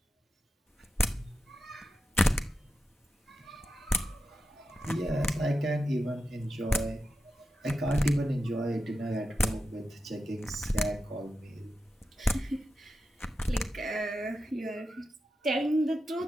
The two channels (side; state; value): both; normal; correlation 0.90